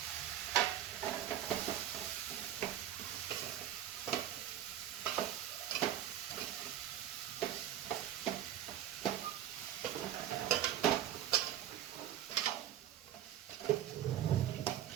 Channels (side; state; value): left; quieter; 11.4 dB